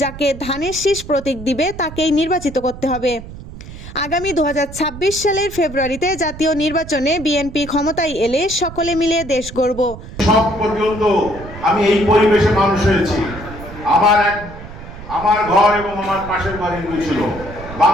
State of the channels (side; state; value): right; noise; rumble, 13 dB below the sound